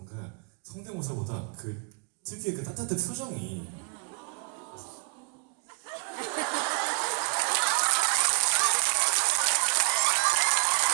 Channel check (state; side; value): quieter; left; 39.6 dB